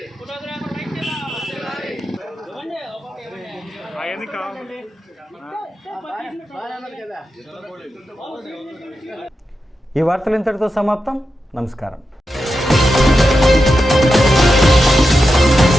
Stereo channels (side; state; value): both; normal; correlation 0.89